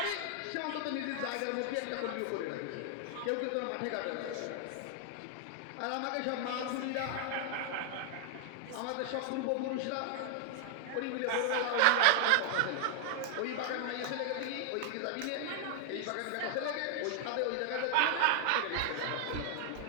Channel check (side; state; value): both; different; correlation 0.00